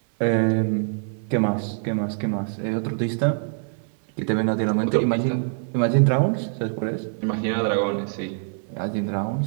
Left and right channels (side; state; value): left; silent; 63 dB below the other